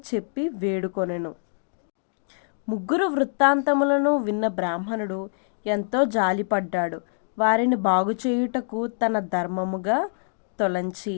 చెప్పి వేడుకొనెను. 3 వృత్తాంతములను విన్న బ్రాహ్మణుడు ఎంతో జాలిపడ్డాడు. వారిని బాగుచేయుటకు తన ధర్మముగా తొలంచి,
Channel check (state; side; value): silent; right; digital silence